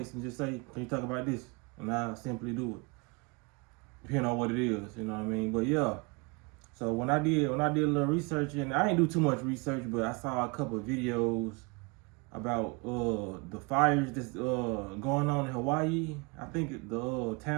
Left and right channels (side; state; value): left; quieter; 29.7 dB